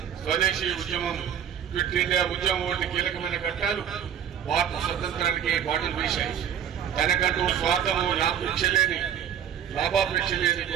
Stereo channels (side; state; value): left; quieter; 9.0 dB